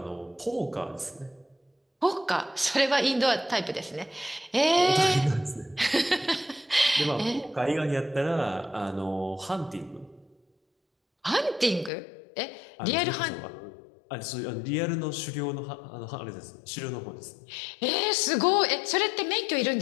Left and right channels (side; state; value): right; drops out; at 11.9 s